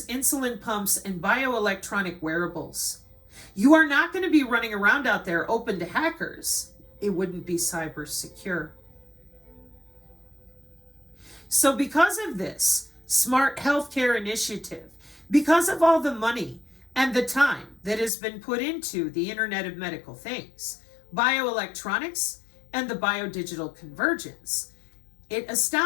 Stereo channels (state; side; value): drops out; right; at 18.1 s